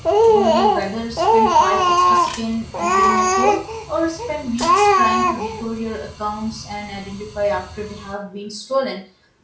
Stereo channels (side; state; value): both; identical; correlation 1.00